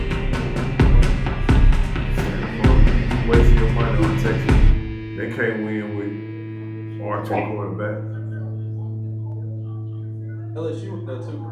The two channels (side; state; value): both; identical; correlation 1.00